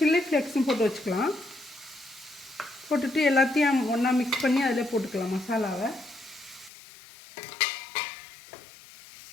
ஃப்ளேக்ஸும் போட்டு வச்சுக்கலாம். போட்டுட்டு எல்லாத்தையும் ஒன்றா மிக்ஸ் பண்ணி அதில் போட்டுக்கலாம் மசாலாவை.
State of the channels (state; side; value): drops out; right; at 6.7 s